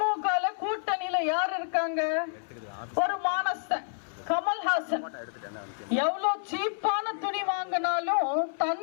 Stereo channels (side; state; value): right; silent; 59 dB below the other